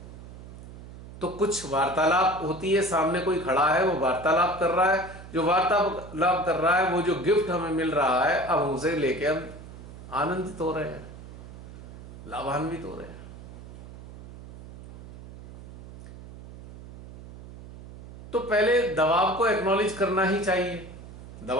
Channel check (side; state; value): right; noise; hum, 15 dB below the sound